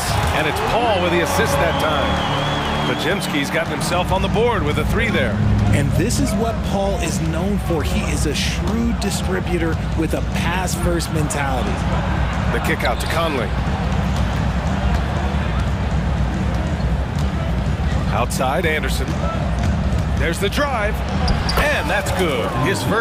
And it's Paul with the assist that time. Podziemski's gotten himself on the board with a 3 there. And this is what Paul is known for. He is a shrewd distributor with a pass-first mentality. The kick out to Conley. Outside, Anderson. There's the drive. And that's good. His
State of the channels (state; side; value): identical; both; correlation 1.00